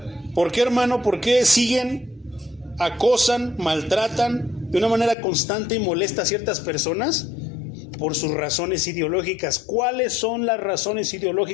¿Por qué, hermano? ¿Por qué siguen, acosan, maltratan de una manera constante y molesta a ciertas personas? Por sus razones ideológicas. ¿Cuáles son las razones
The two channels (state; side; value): drops out; right; at 5.2 s